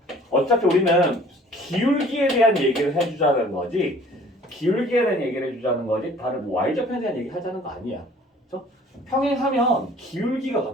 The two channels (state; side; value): normal; both; correlation 0.52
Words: 어차피 우리는 기울기에 대한 얘기를 해주자는 거지 기울기에 대한 얘기를 해주자는 거지 다른 뭐 y절편에 대한 얘기 하자는 거 아니야. 그렇죠? 평행하면 기울기가